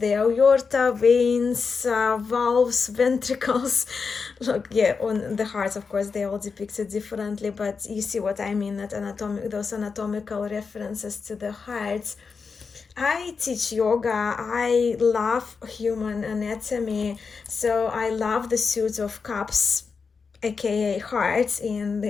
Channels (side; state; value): right; quieter; 5.2 dB